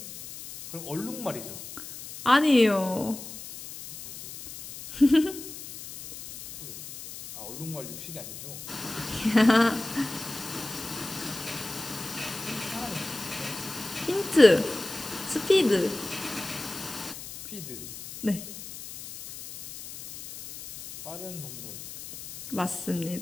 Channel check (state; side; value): noise; left; hiss, 12 dB below the sound